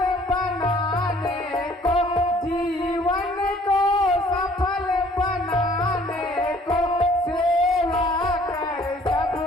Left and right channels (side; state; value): both; normal; correlation 0.57